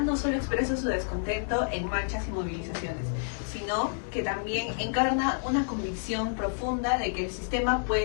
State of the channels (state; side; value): silent; right; 58 dB below the other